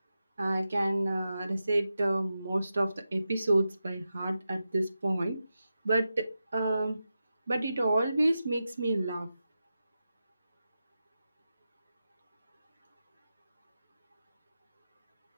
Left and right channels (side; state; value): both; inverted; correlation -0.91